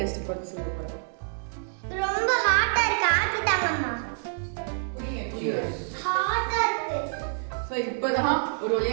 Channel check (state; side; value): silent; left; digital silence